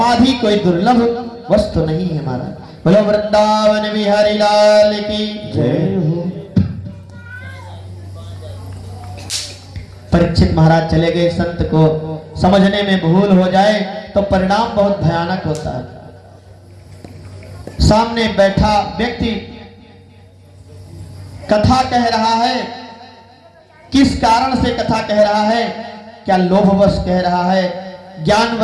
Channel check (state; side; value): identical; both; correlation 1.00